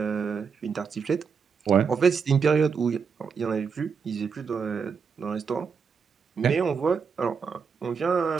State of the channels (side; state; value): left; quieter; 6.0 dB